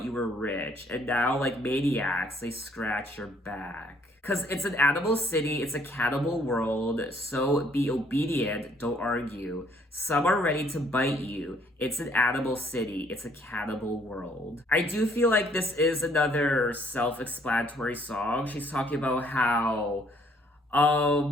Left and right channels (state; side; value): normal; both; correlation 0.64